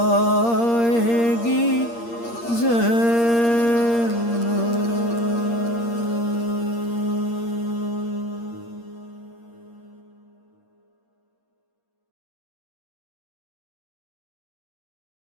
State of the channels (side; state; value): right; late; 8.6 ms